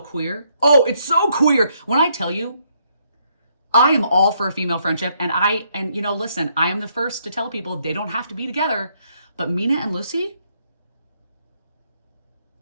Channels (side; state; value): both; inverted; correlation -0.72